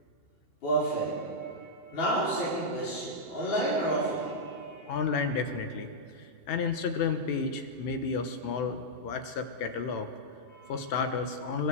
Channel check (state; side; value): late; right; 2.8 ms